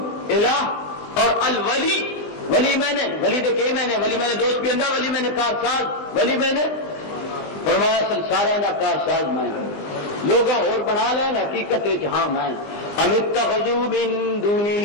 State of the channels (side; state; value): right; late; 20 ms